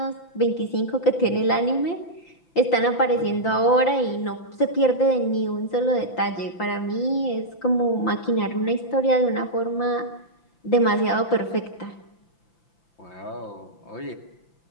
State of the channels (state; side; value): late; right; 5.8 ms